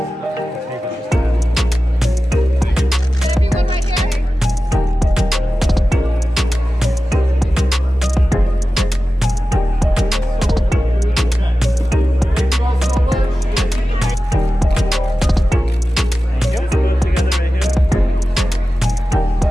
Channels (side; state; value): both; normal; correlation 0.94